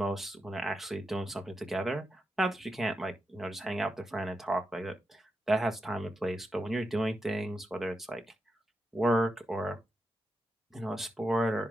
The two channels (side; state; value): both; normal; correlation 0.87